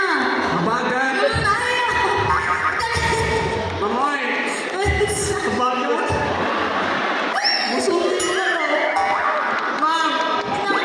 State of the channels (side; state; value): both; identical; correlation 1.00